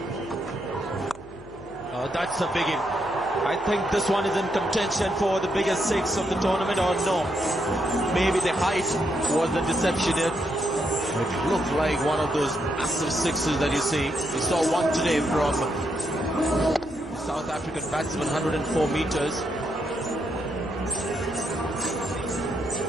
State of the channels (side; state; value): left; noise; hum, 21 dB below the sound